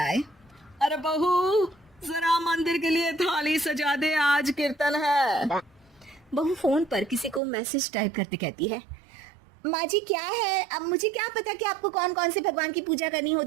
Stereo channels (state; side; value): drops out; left; at 7.4 s